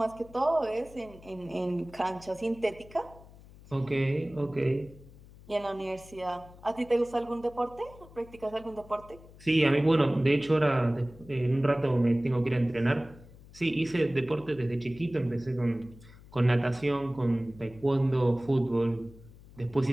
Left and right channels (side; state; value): left; noise; hum, 21 dB below the sound